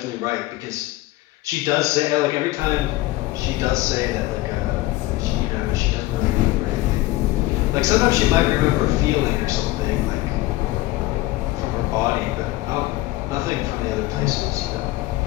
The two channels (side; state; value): right; quieter; 18.2 dB